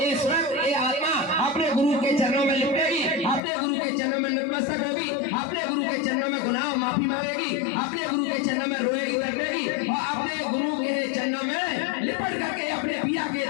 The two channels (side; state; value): right; drops out; at 3.4 s